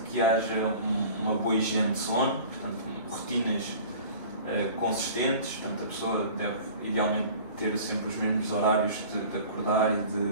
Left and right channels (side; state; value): both; inverted; correlation -0.43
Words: que haja uma boa higiene de sono, portanto, rotinas consistentes, portanto, a pessoa deve idealmente ter sempre os mesmos horários de acordar e